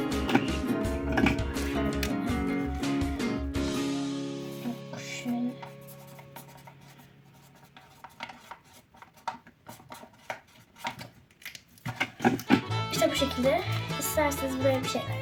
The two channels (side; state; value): both; identical; correlation 1.00